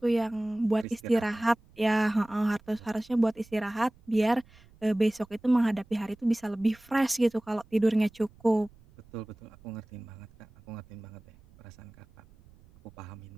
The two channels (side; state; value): right; noise; rumble, 26 dB below the sound